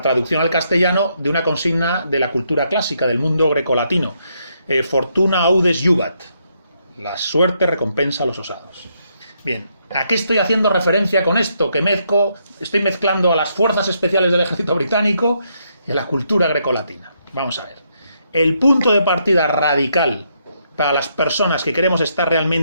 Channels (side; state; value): both; inverted; correlation -0.76